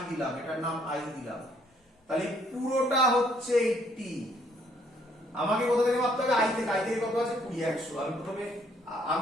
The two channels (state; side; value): normal; both; correlation 0.66